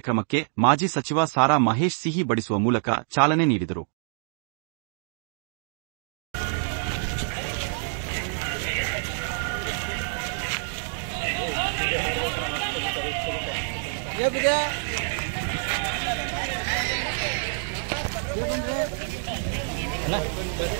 ಮಾಜಿ ಸಚಿವ ಸಾರಾ ಮಹೇಶ್ ಸಿಹಿ ಬಡಿಸುವ ಮೂಲಕ ಚಾಲನೆ ನೀಡಿದರು.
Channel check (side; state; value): left; silent; digital silence